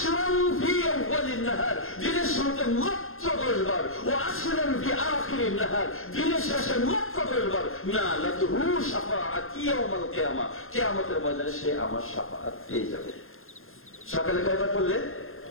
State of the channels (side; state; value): right; late; 0.61 ms